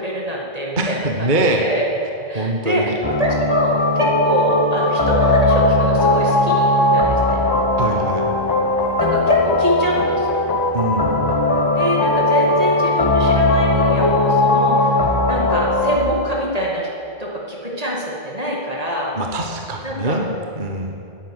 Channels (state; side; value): late; left; 1.8 ms